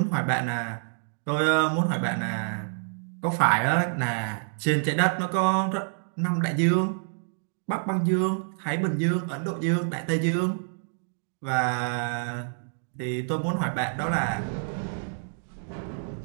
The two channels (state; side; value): silent; left; digital silence